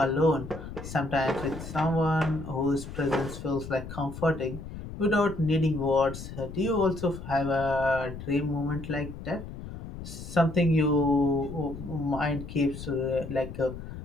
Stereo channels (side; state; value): left; noise; rumble, 11 dB below the sound